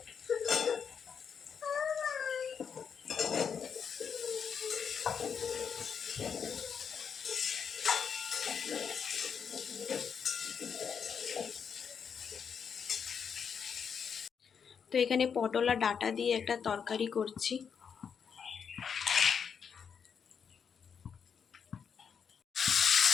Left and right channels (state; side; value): quieter; right; 6.9 dB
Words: তো এখানে পটল আর ডাঁটা দিয়ে একটা তরকারি করছি।